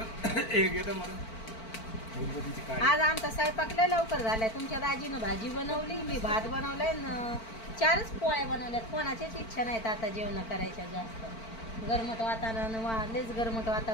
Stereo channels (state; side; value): late; right; 4.5 ms